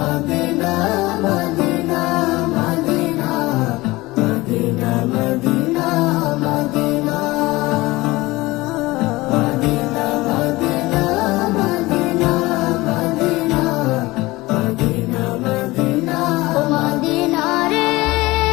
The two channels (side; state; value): right; quieter; 20.5 dB